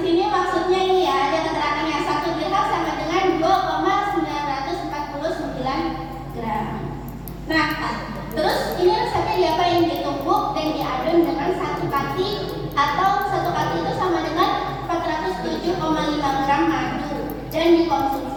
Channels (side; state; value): both; identical; correlation 1.00